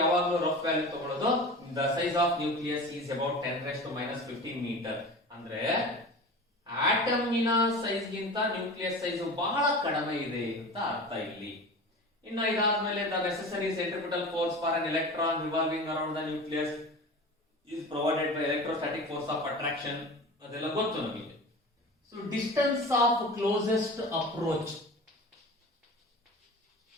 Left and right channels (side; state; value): both; normal; correlation 0.34